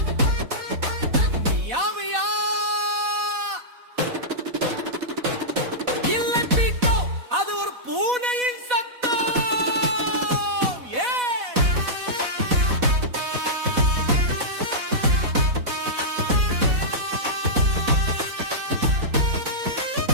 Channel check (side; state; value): left; late; 4.1 ms